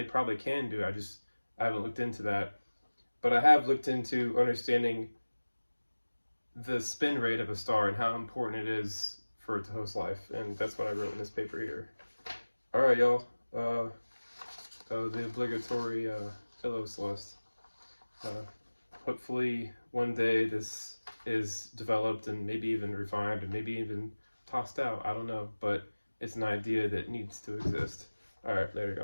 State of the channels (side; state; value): both; inverted; correlation -1.00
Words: probably can do it. I haven't looked into that. But I have looked into understanding the spin rate of a star and how important it is for it to host life. And that's what I wrote in this paper here. All right, y'all. The obligatory hello, Celeste. Hopefully one day this is developed and maybe even refined and maybe even tossed out. I don't know, but it's an idea that needs to exist. All right, there you